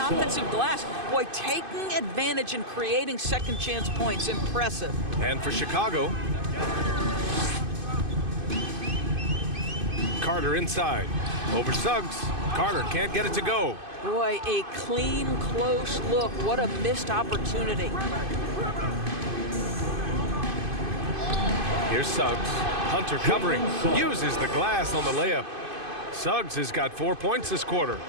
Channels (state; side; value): late; left; 2.5 ms